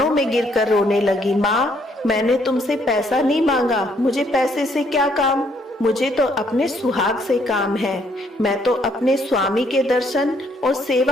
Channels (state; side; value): normal; both; correlation 0.68